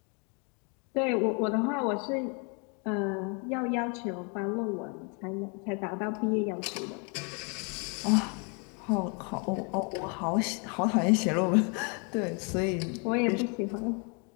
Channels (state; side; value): quieter; right; 35.6 dB